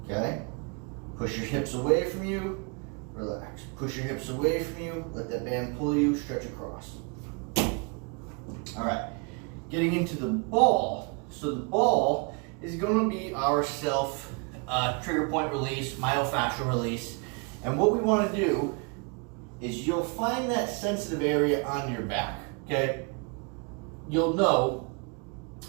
okay? Push your hips away from you, relax. Push your hips away from you, let that band pull you, stretch across. All right, getting into the ball. So the ball is gonna be our self trigger point release, myofascial release. And what we wanna do is you'll find that sensitive area on your back, okay? You'll know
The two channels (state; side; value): quieter; left; 33.9 dB